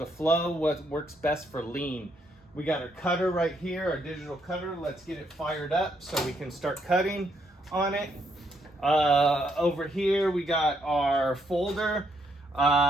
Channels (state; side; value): normal; both; correlation 0.74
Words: flow, what works best for lean. We got our cutter right here, our digital cutter. Let's get it fired up so we can start cutting on it. Over here, we got our folder.